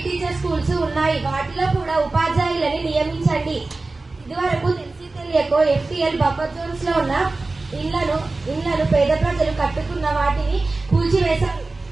టీచర్ స్కూల్స్ ఉన్నాయి. వాటిలో కూడా ఉపాధ్యాయులని నియమించండి. ఇదివరకు తెలియకో FTL బఫర్ జోన్స్ లో ఉన్న ఇళ్లను పేద ప్రజలు కట్టుకున్న వాటిని కూల్చివేశారు.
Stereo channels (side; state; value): left; quieter; 3.4 dB